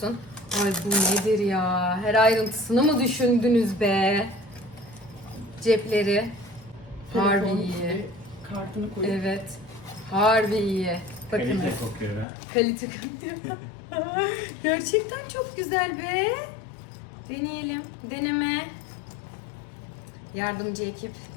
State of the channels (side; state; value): right; drops out; at 12.2 s